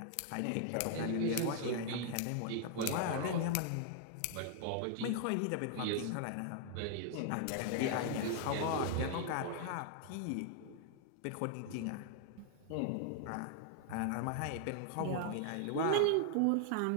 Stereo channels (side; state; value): both; different; correlation 0.00